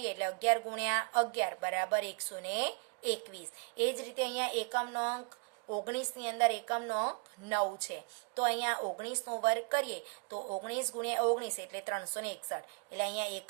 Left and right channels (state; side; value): quieter; left; 35.2 dB